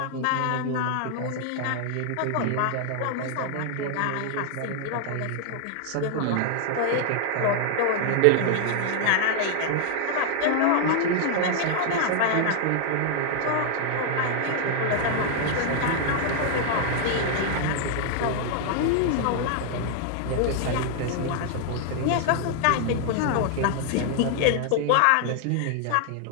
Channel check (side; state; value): both; different; correlation 0.00